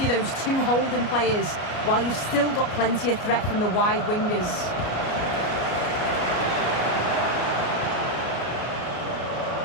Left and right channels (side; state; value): right; late; 33 ms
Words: those two holding players, while you've still got plenty of threat from the wide wingers.